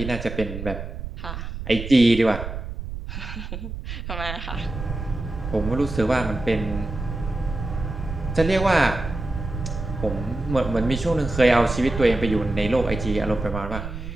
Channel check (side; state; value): right; noise; rumble, 7 dB below the sound